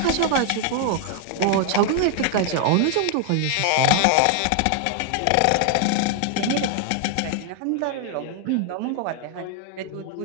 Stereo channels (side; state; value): both; different; correlation 0.00